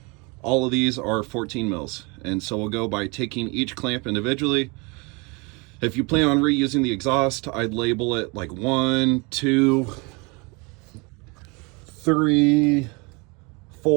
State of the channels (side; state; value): left; quieter; 28.8 dB